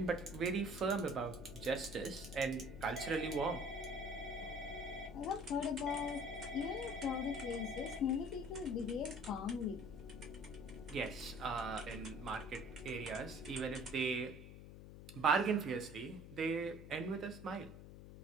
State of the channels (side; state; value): left; noise; hum, 13 dB below the sound